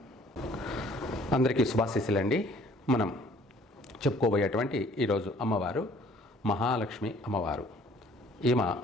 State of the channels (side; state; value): both; normal; correlation 0.56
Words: అందరికీ శుభాశీస్సులండి. మనం చెప్పుకోబోయేటువంటి ఈరోజు అమ్మవారు మహాలక్ష్మి అమ్మవారు. ఈమె